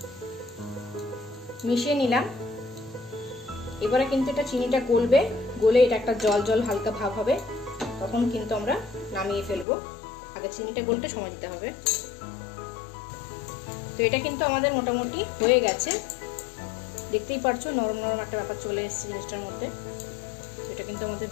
মিশিয়ে নিলাম। এবারে কিন্তু এটা চিনিটা গলবে, গলে এটা একটা জল জল হালকা ভাব হবে, তখন কিন্তু আমরা নামিয়ে ফেলবো। আগে চিনিটা গলতে সময় দিতে হবে। তো এটা কিন্তু আমাদের মোটামুটি হয়ে গেছে, দেখতেই পারছো নরম নরম একটা ব্যাপার চলে এসেছে জিনিসটার মধ্যে। এটা কিন্তু আমাদের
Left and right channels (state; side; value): drops out; right; at 9.7 s